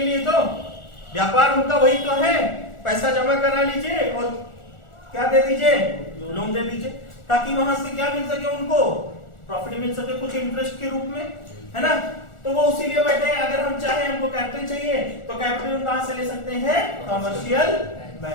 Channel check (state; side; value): late; right; 1.4 ms